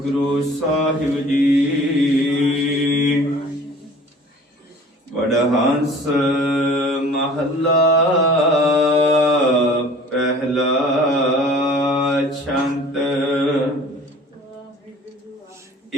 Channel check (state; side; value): normal; both; correlation 0.47